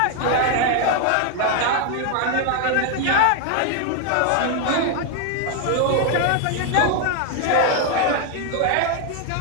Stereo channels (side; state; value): both; different; correlation 0.00